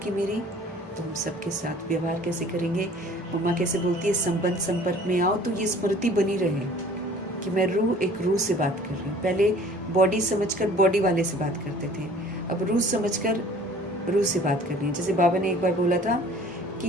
मेरी तो हम सबके साथ व्यवहार कैसे करेंगे। मम्मा कैसे बोलती है, संबंध संपर्क में आओ तो ये स्मृति बनी रहे कि मैं रूह, एक रूह से बात कर रही हूँ। पहले बॉडी समझकर बॉडी वाले से बात करते थे, अब रूह समझकर रूह से बात करनी है। जैसे बाबा ने एक बार बोला था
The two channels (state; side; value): normal; both; correlation 0.50